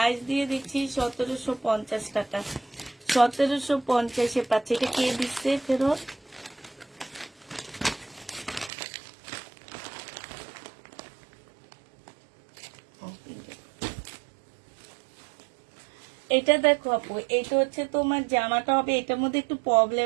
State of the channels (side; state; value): left; drops out; at 8.7 s